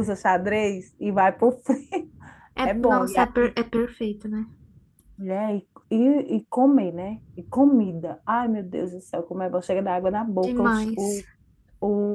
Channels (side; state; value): both; identical; correlation 1.00